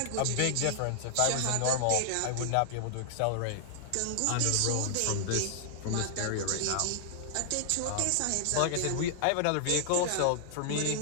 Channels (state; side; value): different; both; correlation 0.00